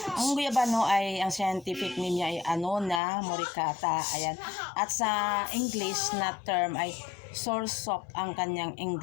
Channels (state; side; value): drops out; right; at 3.0 s